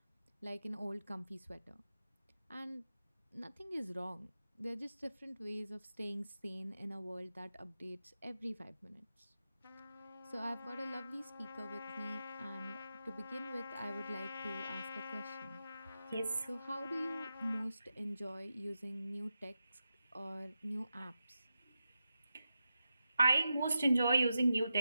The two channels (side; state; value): both; inverted; correlation -0.89